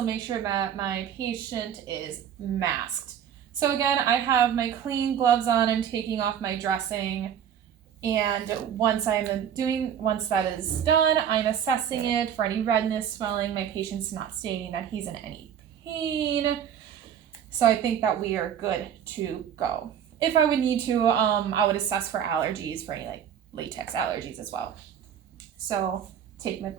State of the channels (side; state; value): left; quieter; 9.0 dB